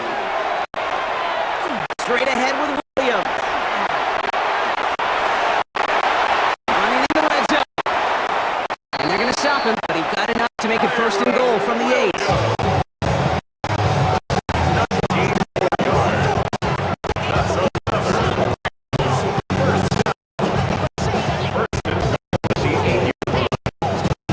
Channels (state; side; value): identical; both; correlation 1.00